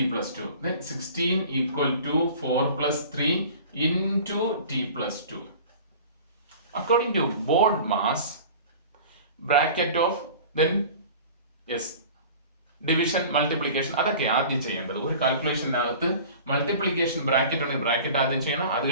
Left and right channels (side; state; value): both; inverted; correlation -0.41